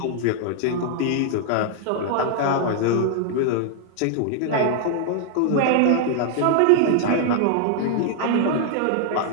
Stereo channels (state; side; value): different; both; correlation 0.00